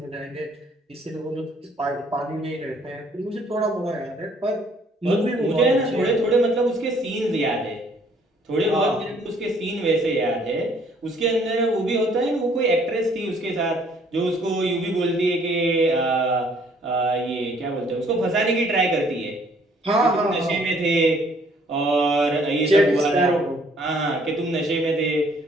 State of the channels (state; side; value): normal; both; correlation 0.62